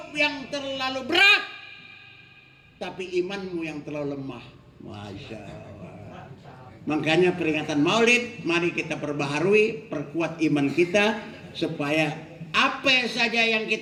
yang terlalu berat, tapi imanmu yang terlalu lemah. Masya Allah. Makanya peringatan Maulid, mari kita perbaharui, perkuat iman kita, supaya apa saja yang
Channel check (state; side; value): identical; both; correlation 1.00